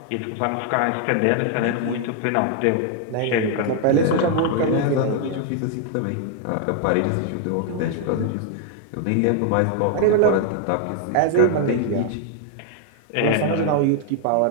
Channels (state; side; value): different; both; correlation 0.00